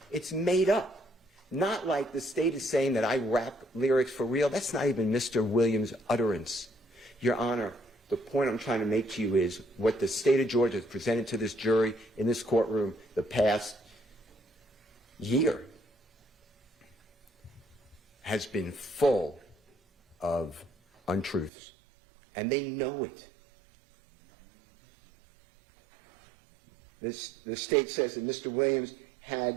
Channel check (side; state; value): left; drops out; at 21.5 s